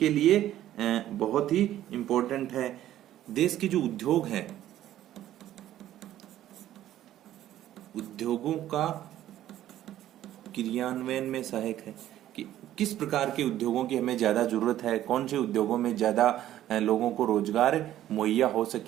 लिए बहुत ही इंपॉर्टेंट है। देश के जो उद्योग हैं, उद्योगों का क्रियान्वयन में सहायक है कि किस प्रकार के उद्योगों की हमें ज्यादा जरूरत है, कौन से उद्योगों में ज्यादा लोगों को रोजगार मुहैया हो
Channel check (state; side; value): quieter; left; 12.7 dB